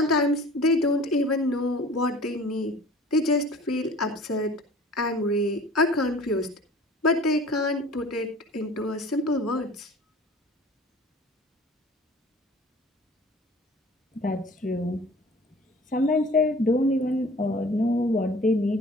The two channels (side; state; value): both; normal; correlation 0.46